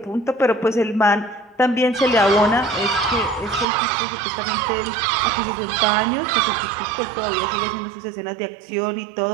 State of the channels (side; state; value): left; drops out; at 3.7 s